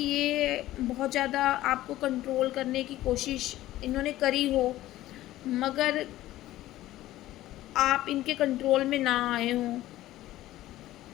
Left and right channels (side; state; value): right; quieter; 15.2 dB